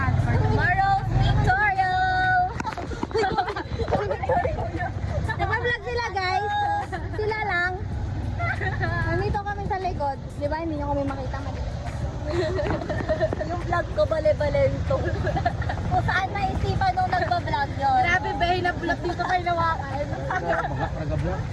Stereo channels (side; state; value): both; identical; correlation 1.00